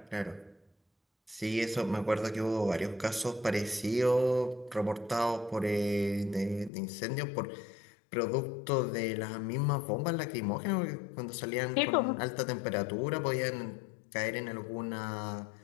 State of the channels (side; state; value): right; drops out; at 6.7 s